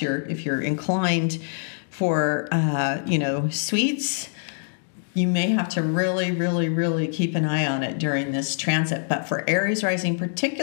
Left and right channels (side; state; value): right; silent; digital silence